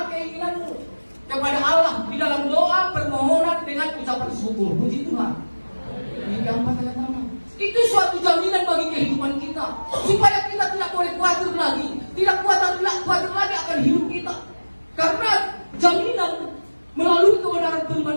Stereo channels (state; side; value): inverted; both; correlation -1.00